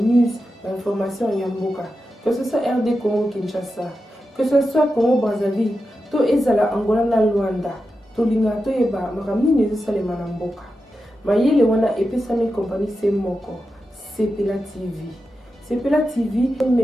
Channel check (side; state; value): both; normal; correlation 0.90